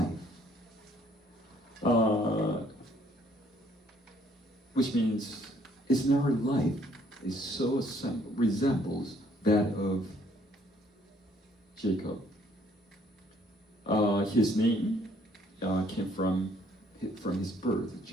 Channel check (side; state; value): both; normal; correlation 0.63